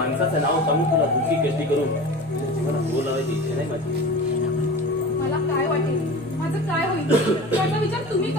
नाव सांगून तुला दुःखी कष्टी करून जीवनात बोल लावायची इच्छा नाही माझी. मला काय वाटेल माझं काय होईल याचा विचार तुम्ही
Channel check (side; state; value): both; normal; correlation 0.34